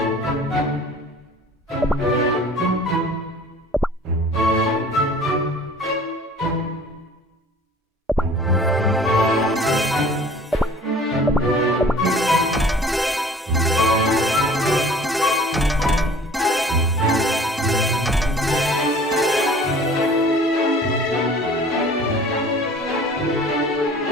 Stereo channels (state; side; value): normal; both; correlation 0.48